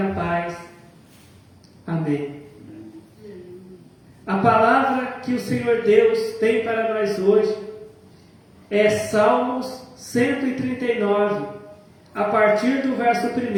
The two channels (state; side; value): identical; both; correlation 1.00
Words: paz. Amém. A palavra que o Senhor Deus tem para nós hoje é Salmos 139, a partir do verso